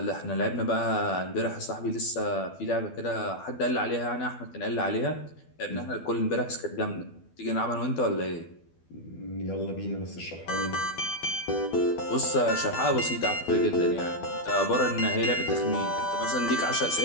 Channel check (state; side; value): late; right; 12 ms